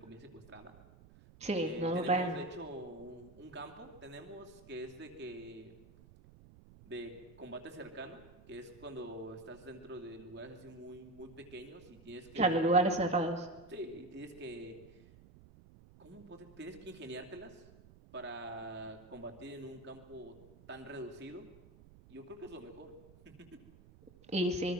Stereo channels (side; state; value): right; noise; rumble, 21 dB below the sound